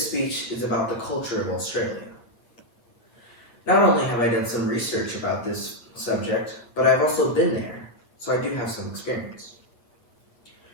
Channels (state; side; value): late; right; 8.3 ms